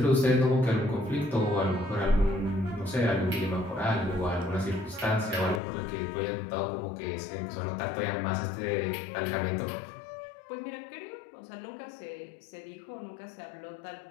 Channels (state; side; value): drops out; right; at 5.6 s